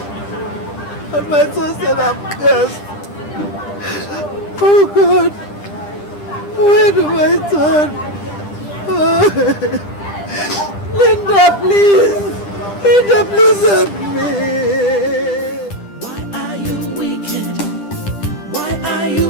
And my son said I'm cursed. Oh God. Where do I turn? Linda, please. Linda, please help me. Why are you wicked? Why are you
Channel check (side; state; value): right; late; 10 ms